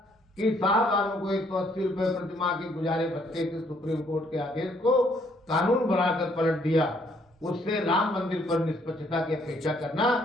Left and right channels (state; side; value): normal; both; correlation 0.67